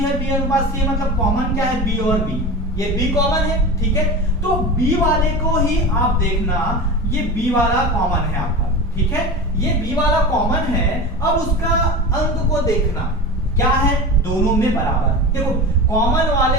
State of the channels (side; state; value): both; normal; correlation 0.29